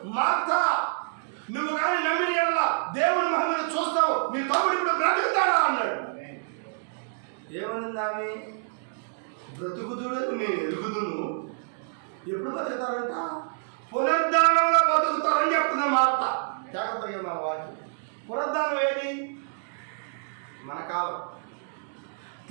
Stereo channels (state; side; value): silent; left; digital silence